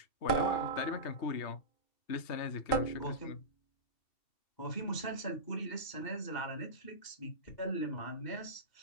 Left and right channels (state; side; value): late; right; 2.7 ms